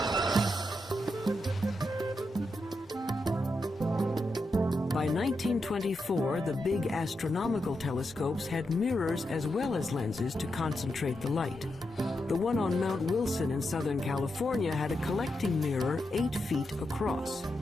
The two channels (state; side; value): normal; both; correlation 0.86